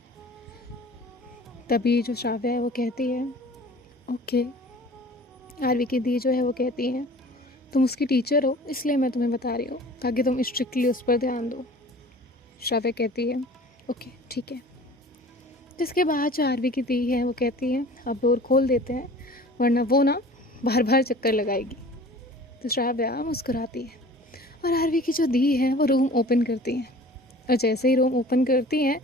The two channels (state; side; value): normal; both; correlation 0.45